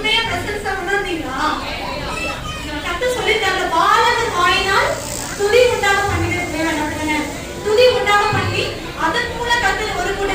பிரசன்ஸா உணர்ந்தீங்களா? கத்த சொல்லிட்டாங்க, பாலகன் வாயினால் துதி உண்டாக பண்ணிக்கிறது தேவன் அப்படிங்க. துதி உண்டாக பண்ணி அதன் மூலம் கத்த ஒரு கூட்ட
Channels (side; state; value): both; identical; correlation 1.00